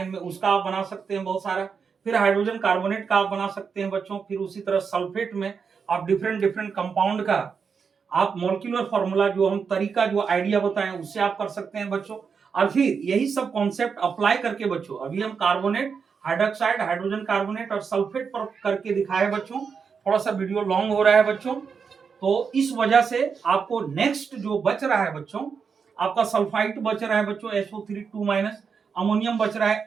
में, उसका आप बना सकते हैं बहुत सारा। फिर हाइड्रोजन कार्बोनेट का आप बना सकते हैं बच्चों। फिर उसी तरह सल्फेट में आप डिफरेंट डिफरेंट कंपाउंड का आप मॉलिक्यूलर फॉर्मूला जो हम तरीका जो आइडिया बताएं उससे आप कर सकते हैं बच्चों। और फिर यही सब कॉन्सेप्ट अप्लाई करके बच्चों, अभी हम कार्बोनेट, हाइड्रोक्साइड, हाइड्रोजन कार्बोनेट और सल्फेट पर करके दिखाए बच्चों। थोड़ा सा वीडियो लॉन्ग हो रहा है बच्चों, तो इस वजह से आपको नेक्स्ट जो बच रहा है बच्चों, आपका सल्फाइड बच रहा है बच्चों SO3 2-, अमोनियम बच रहा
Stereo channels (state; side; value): quieter; left; 5.9 dB